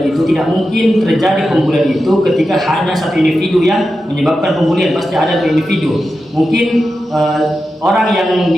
itu tidak mungkin terjadi pembulian itu ketika hanya satu individu yang menyebabkan pembulian, pasti ada dua individu. Mungkin orang yang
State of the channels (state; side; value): normal; both; correlation 0.91